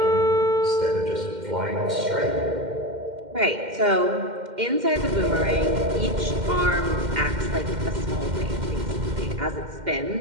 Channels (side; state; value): left; late; 2.1 ms